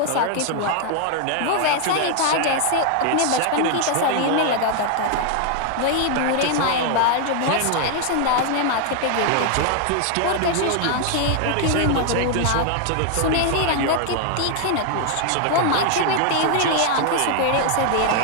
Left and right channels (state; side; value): different; both; correlation 0.00